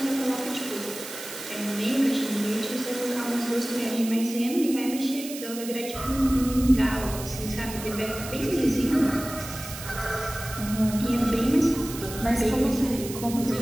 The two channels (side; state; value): right; noise; hiss, 11 dB below the sound